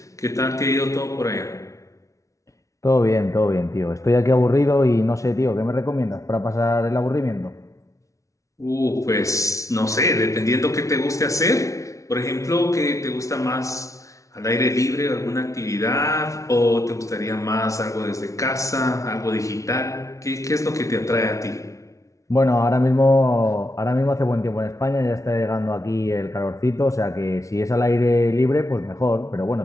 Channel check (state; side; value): late; right; 0.15 ms